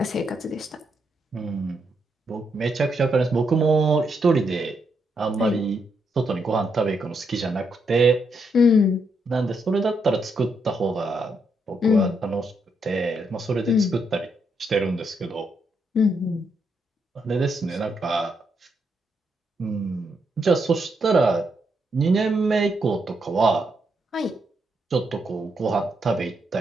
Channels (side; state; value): both; normal; correlation 0.79